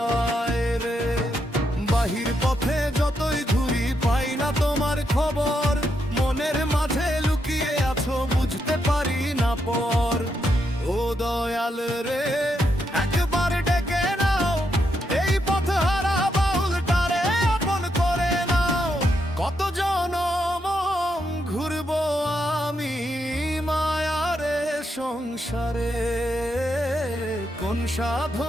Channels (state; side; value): normal; both; correlation 0.81